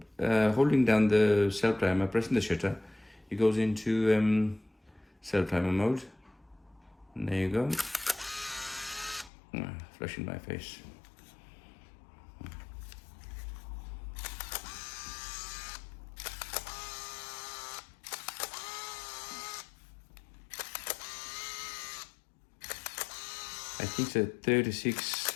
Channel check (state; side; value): drops out; right; at 9.3 s